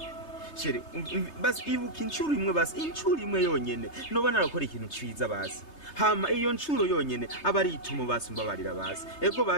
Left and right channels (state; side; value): late; right; 3.3 ms